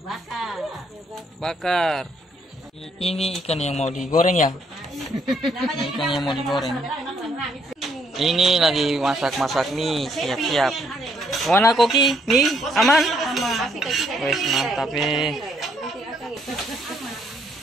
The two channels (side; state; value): both; normal; correlation 0.70